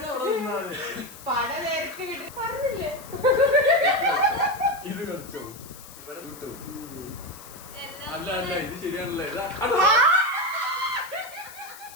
ഇത് കളിച്ചോ ഇവിടെ കിട്ടു. അല്ല അല്ല ഇത് ശരിയാണല്ലേ.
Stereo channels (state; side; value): noise; left; hiss, 17 dB below the sound